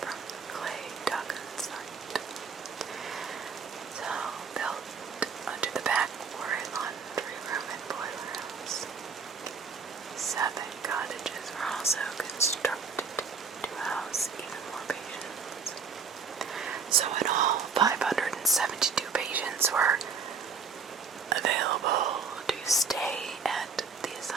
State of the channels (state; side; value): quieter; left; 5.5 dB